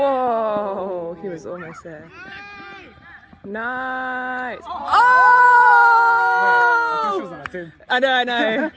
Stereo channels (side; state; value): both; identical; correlation 1.00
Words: he was almost there. Nice. Oh! I know.